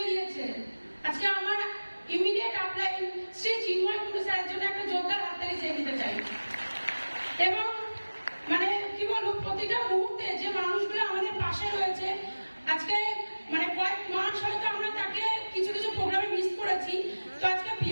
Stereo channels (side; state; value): both; inverted; correlation -1.00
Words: দিয়েছে, আজকে আমার ইমিডিয়েট আপলাইন শ্রী চিন্ময় কুণ্ডু স্যারের জন্য একটা জোরদার হাততালি চেয়ে দিতে চাই। এবং মানে কি বলবো, প্রতিটা মুহূর্তে যে মানুষগুলো আমাদের পাশে রয়েছে, আজকে মানে কয়েক মাস হয়তো আমরা তাকে কিছু কিছু প্রোগ্রামে মিস করেছি। তো আজকে